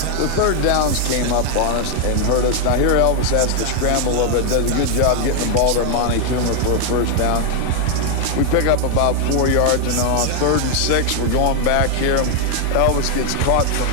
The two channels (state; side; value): different; both; correlation 0.00